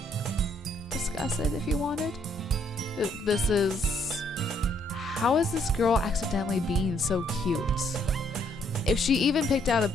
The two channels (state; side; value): normal; both; correlation 0.69